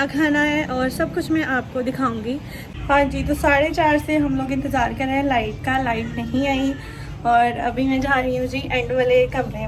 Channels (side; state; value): both; identical; correlation 1.00